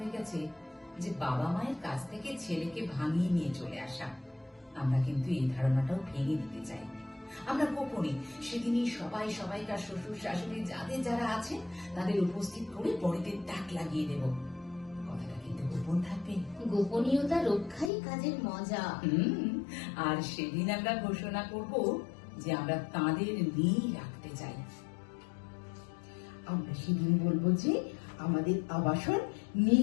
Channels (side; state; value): right; drops out; at 17.9 s